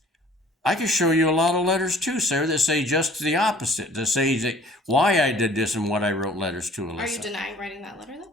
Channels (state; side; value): normal; both; correlation 0.52